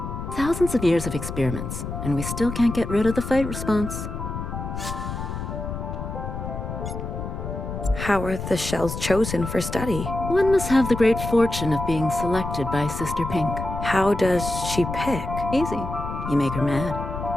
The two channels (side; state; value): left; noise; rumble, 6 dB below the sound